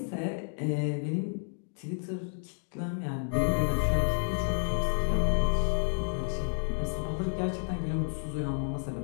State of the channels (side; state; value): right; silent; 57 dB below the other